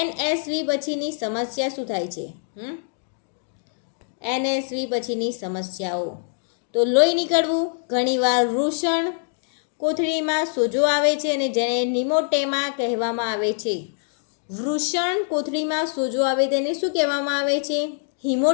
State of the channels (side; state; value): right; silent; digital silence